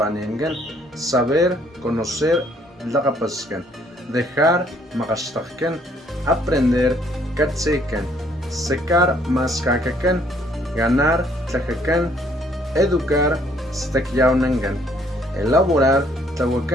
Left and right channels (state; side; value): normal; both; correlation 0.64